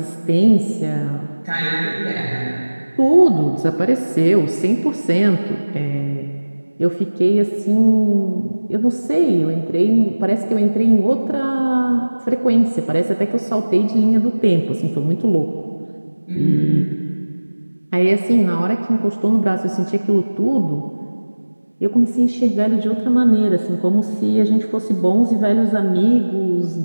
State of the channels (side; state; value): both; inverted; correlation -1.00